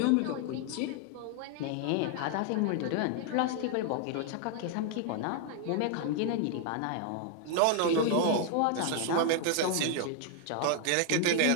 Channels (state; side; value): different; both; correlation 0.00